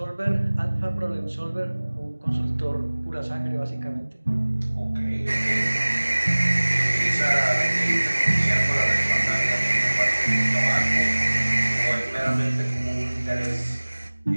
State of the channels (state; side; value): inverted; both; correlation -1.00